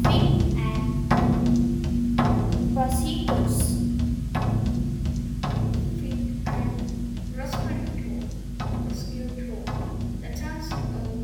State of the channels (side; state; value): both; identical; correlation 1.00